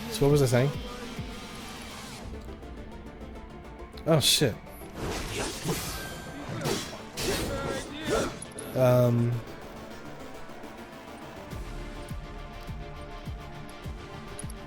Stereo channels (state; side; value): identical; both; correlation 1.00